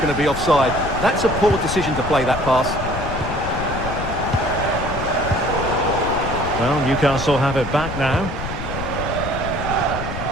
to be offside. That's a poor decision to play that pass. Well, Newcastle have it back now.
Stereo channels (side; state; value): left; noise; rumble, 6 dB below the sound